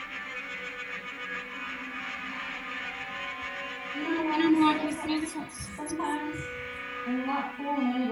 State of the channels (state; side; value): identical; both; correlation 1.00